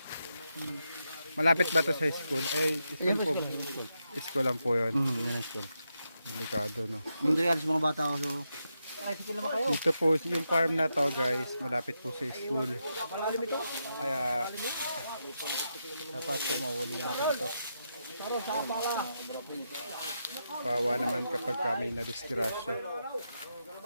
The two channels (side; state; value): both; inverted; correlation -0.85